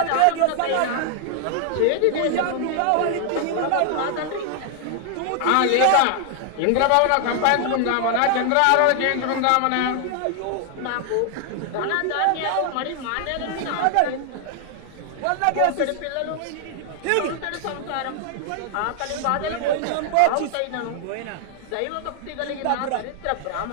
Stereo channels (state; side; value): different; both; correlation 0.00